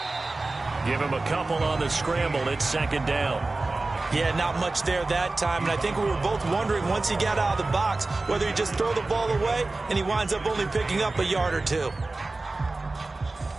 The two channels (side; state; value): left; quieter; 3.3 dB